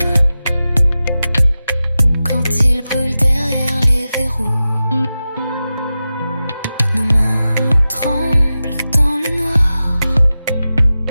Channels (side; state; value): both; inverted; correlation -0.94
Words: quand il brûle derrière les verrous. Nos mains tremblent dans le noir,